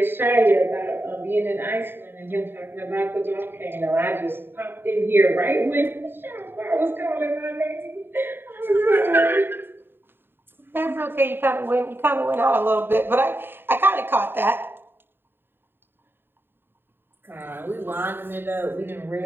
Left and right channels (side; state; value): left; late; 0.10 ms